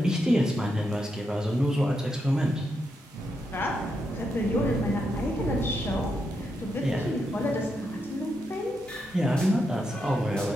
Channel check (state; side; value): normal; both; correlation 0.83